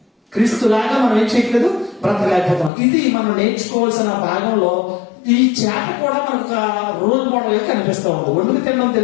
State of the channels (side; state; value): right; drops out; at 2.7 s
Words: క్రీస్తులాగా మనం ఏం చేయట్లేదు, బ్రతకలేకపోతున్నాం. ఇది మనం నేర్చుకోవాల్సిన భాగంలో ఈ చేప కూడా మనకు ఒక రోల్ మోడల్ గా కనిపిస్తూ ఉంది. వండుకు తినడం